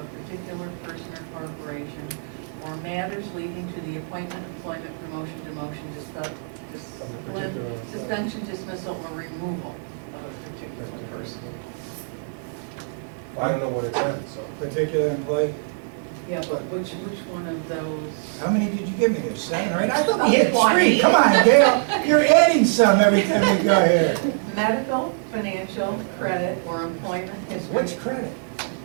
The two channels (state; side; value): silent; left; 63 dB below the other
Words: particular person or corporation, or matters leading to the appointment, employment, promotion, demotion, suspension, dismissal, or removal of a particular person. Well, I don't know what it said, so. Particular employee. Yeah, but which one of those? How many did you give me there? 7 or 8? I thought we had 20. 3. Come on, Gail. You're adding some every time we go here. Medical, financial, credit, or employment history. Which credit?